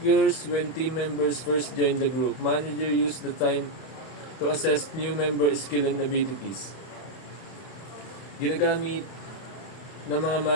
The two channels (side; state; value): right; late; 31 ms